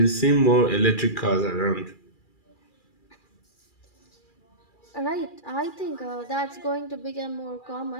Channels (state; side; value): late; right; 2.4 ms